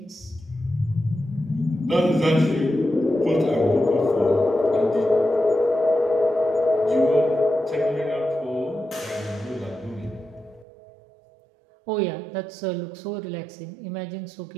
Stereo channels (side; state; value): left; drops out; at 10.7 s